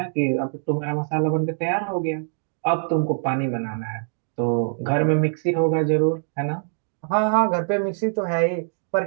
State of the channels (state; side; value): silent; left; digital silence